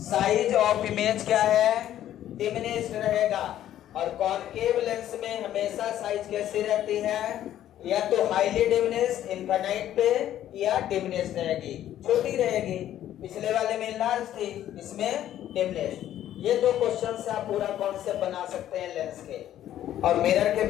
साइज ऑफ इमेज क्या है? डिमिनिश्ड रहेगा। और कॉनकेव लेंस में हमेशा साइज कैसी रहती है? या तो हाईली डिमिनिश्ड इनफाइनाइट पे, या डिमिनिश्ड रहेगी, छोटी रहेगी। पिछले वाले में लार्ज थी, इसमें डिमिनिश्ड। ये दो क्वेश्चन से आप पूरा कॉन्सेप्ट बना सकते हैं लेंस के। और मिरर के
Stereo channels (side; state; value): right; quieter; 12.0 dB